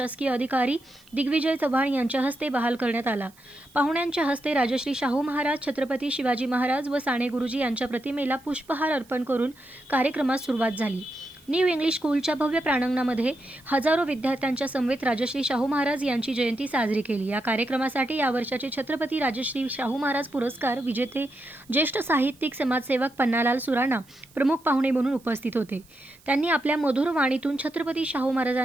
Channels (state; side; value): noise; right; hiss, 28 dB below the sound